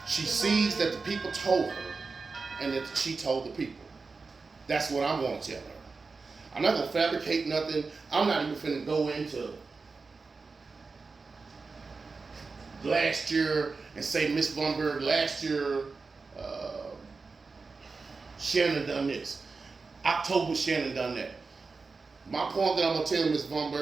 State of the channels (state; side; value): quieter; left; 4.3 dB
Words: She sees that the people told her and that she told the people. That's what I'm going to tell her. I'm not going to fabricate nothing. I'm not even finna go into last year and say, Miss Bunberg, last year, Shannon done this. October, Shannon done that. My point that I'm going to tell Miss